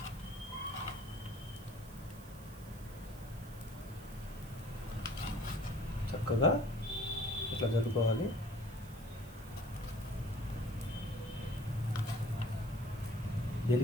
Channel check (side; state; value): right; noise; hiss, 21 dB below the sound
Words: చక్కగా ఇట్లా జరుపుకోవాలి.